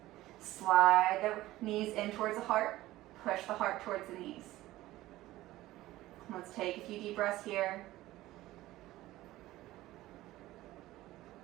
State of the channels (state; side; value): quieter; left; 16.5 dB